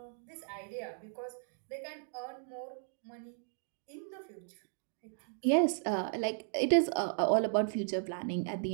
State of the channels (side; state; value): left; silent; digital silence